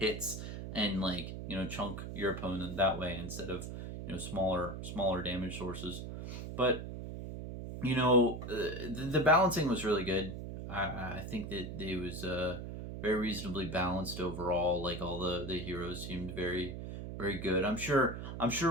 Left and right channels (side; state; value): right; noise; hum, 7 dB below the sound